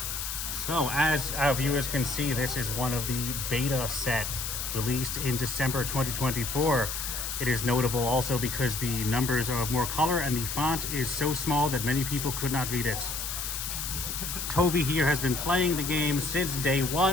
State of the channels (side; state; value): left; noise; hiss, 4 dB below the sound